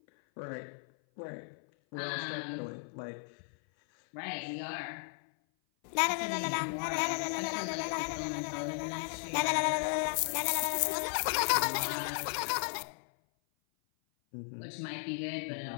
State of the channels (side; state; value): right; silent; 54 dB below the other